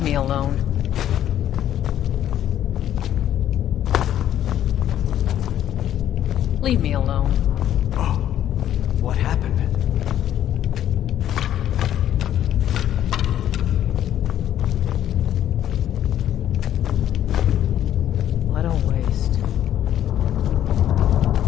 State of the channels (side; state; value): right; quieter; 11.3 dB